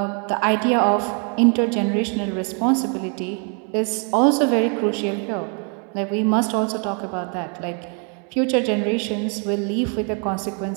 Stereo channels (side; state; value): left; quieter; 39.5 dB